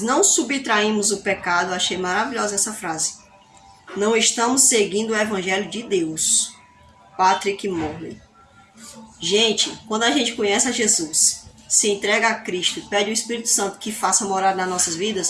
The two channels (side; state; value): both; identical; correlation 1.00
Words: subtraímos o pecado, achei maravilhosa essa frase. Não estamos seguindo o Evangelho de Deus. Patrick Morley. Gente, quando a gente conhece a Jesus, se entrega a Cristo, pede o Espírito Santo que faça morada nas nossas